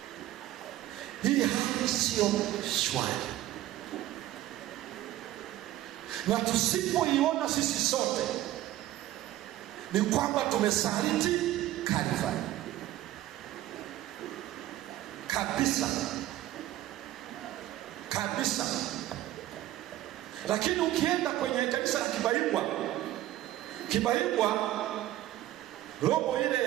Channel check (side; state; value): left; quieter; 14.5 dB